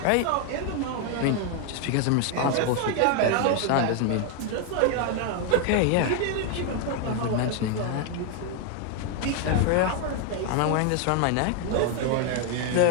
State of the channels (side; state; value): both; different; correlation 0.01